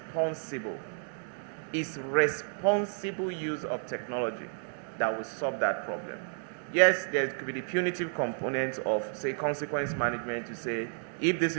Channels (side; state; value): left; silent; digital silence